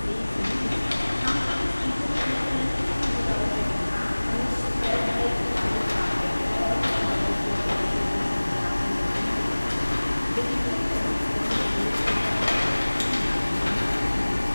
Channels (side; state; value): both; inverted; correlation -1.00